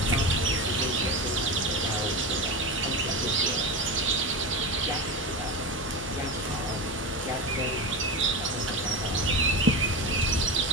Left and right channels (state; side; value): normal; both; correlation 0.22